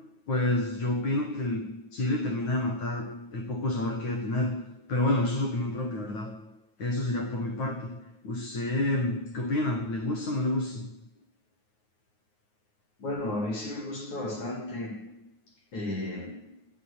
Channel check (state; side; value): late; right; 9.5 ms